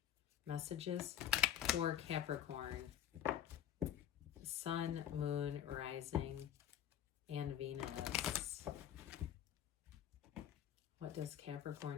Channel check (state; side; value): quieter; right; 10.6 dB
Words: Messages for Capricorn. Sun, Moon, Rising, and Venus. What does Capricorn